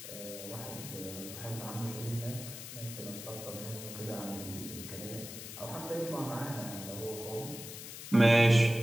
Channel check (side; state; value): left; noise; hiss, 10 dB below the sound